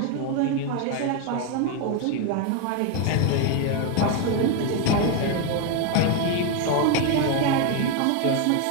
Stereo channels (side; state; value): both; different; correlation 0.02